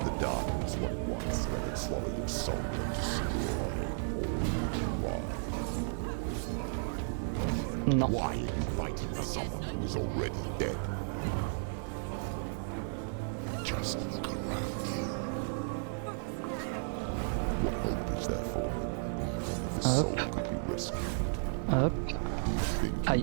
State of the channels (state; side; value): silent; left; digital silence